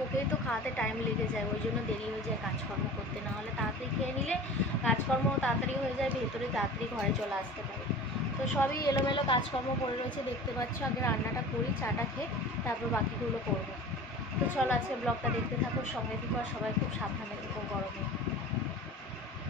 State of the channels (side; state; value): both; normal; correlation 0.38